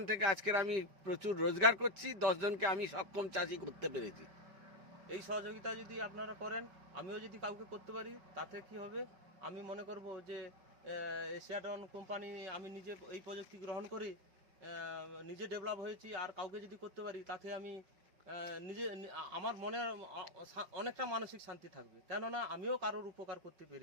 থেকে আজকের আমি প্রচুর রোজগার করছি, 10 জনকে আমি সক্ষম চাষি করতে পেরেছি। এই সহযোগিতা যদি আপনারা করেন, আমিও যদি কাউকে করতে পারি, তাতে কি হবে, আমি মনে করব যে এশিয়াডন কোম্পানি, আমি নিজে এই প্রযুক্তি গ্রহণ করি, নিজে ডেভেলপ হয়েছি, আর কাউকে যদি করতে পারি, তাতে আমি নিজে আমার মনে অনেকটা মানসিক শান্তি থাকবে, কেননা আমিও কারোর উপকার করতে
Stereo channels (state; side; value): late; left; 5.1 ms